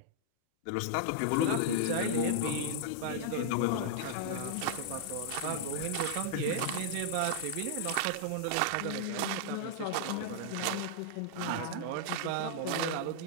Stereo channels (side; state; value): both; different; correlation -0.01